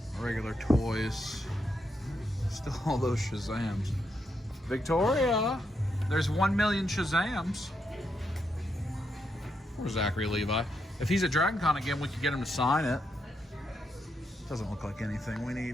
Regular toys. Still all those Shazams. Victoria, there's 1 million Shazams. Or Zachary Levi. If he's at Dragon Con again, we could get him to sign it. Doesn't look like anything we need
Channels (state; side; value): normal; both; correlation 0.81